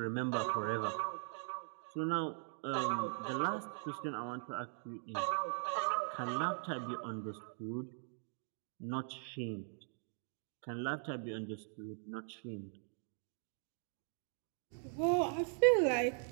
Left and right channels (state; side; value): silent; left; 51 dB below the other